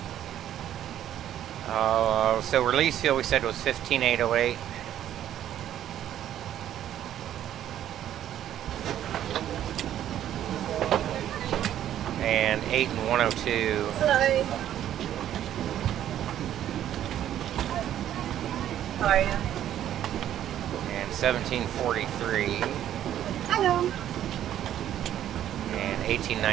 So release fuel we said was 15,808. And 8 and 102. Hello. How are you? And 1743. Hello. And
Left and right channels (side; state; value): left; quieter; 11.3 dB